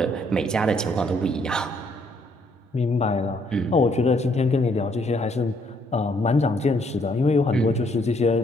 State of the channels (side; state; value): both; normal; correlation 0.68